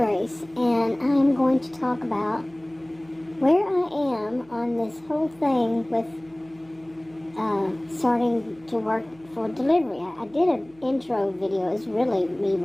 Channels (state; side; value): noise; right; hum, 28 dB below the sound